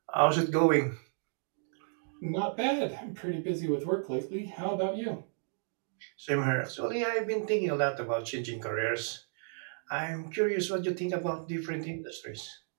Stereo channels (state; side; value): silent; left; digital silence